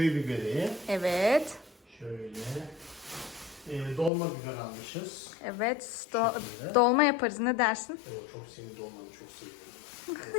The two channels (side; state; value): right; drops out; at 4.1 s